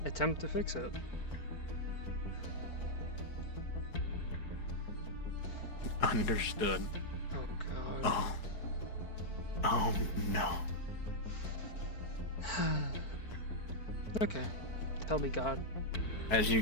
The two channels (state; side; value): late; right; 4.5 ms